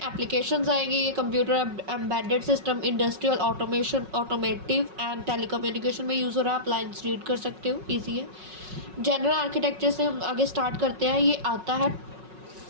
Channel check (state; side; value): late; left; 5.4 ms